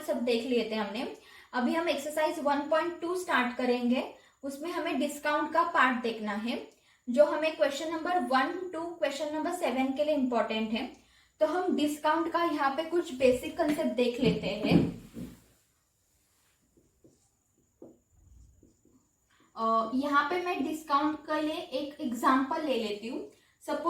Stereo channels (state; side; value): identical; both; correlation 1.00